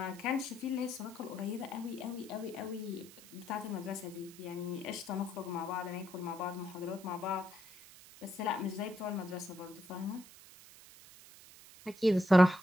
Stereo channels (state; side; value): noise; right; hiss, 19 dB below the sound